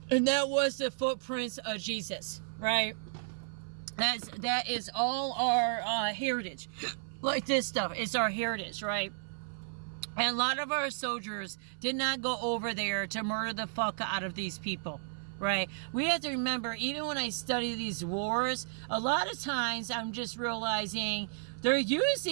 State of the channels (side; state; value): left; silent; 56 dB below the other